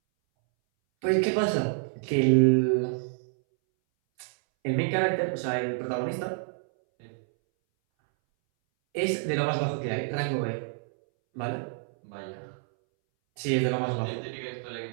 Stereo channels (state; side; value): silent; left; 59 dB below the other